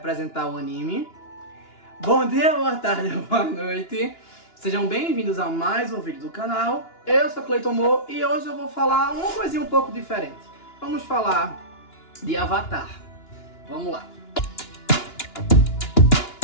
o anime? Bom dia, boa tarde, boa noite. Sejam bem-vindos a mais um vídeo do canal. Eu sou Cleiton Mo e hoje eu vou falar uma coisinha um pouco diferente. Vamos falar de Avatar. Vamos lá.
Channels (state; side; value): late; right; 2.9 ms